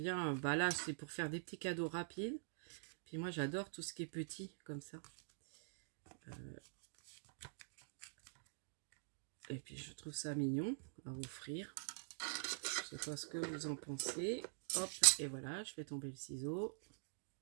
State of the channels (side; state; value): left; silent; digital silence